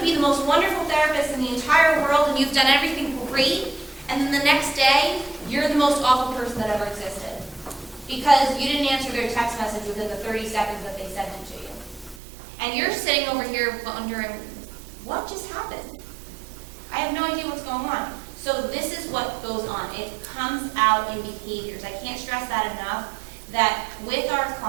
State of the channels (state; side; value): drops out; left; at 12.2 s